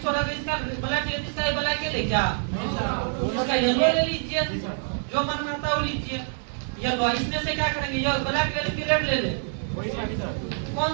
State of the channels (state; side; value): silent; left; 61 dB below the other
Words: छोड़ा, इसका ब्लैक ले, इसका ब्लैक ले, क्या इसका येलो ले लीजिए, जो मन में आता है वो लीजिए। येलो, इसमें से क्या करेंगे? ये ब्लैक ले लेंगे, रेड ले ले, कौन